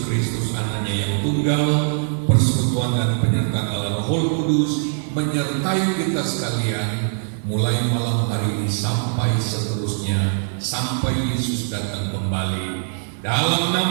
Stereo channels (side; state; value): left; silent; digital silence